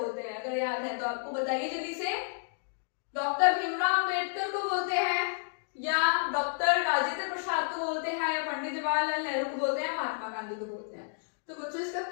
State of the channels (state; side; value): silent; right; digital silence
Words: हैं? अगर याद है तो आपको बताइए जल्दी से। डॉक्टर भीमराव अंबेडकर को बोलते हैं या डॉक्टर राजेंद्र प्रसाद को बोलते हैं या पंडित जवाहरलाल नेहरू को बोलते हैं, महात्मा गांधी को बोलते हैं? तो बच्चों इसका